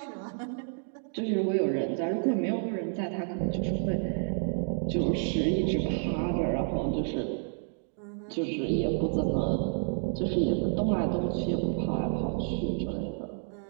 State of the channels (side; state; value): left; silent; digital silence